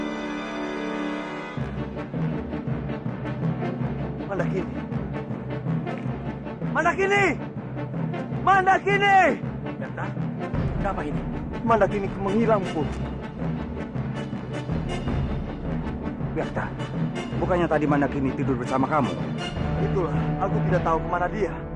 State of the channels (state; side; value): identical; both; correlation 1.00